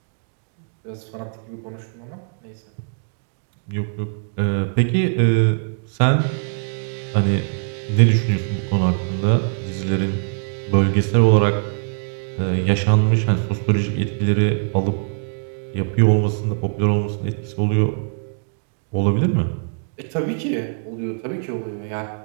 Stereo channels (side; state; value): left; silent; digital silence